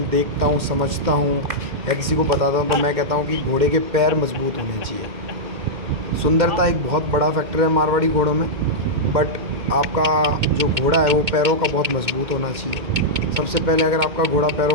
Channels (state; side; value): late; left; 2.1 ms